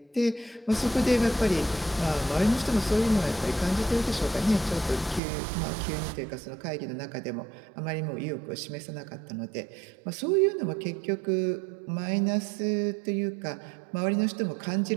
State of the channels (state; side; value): drops out; left; at 5.2 s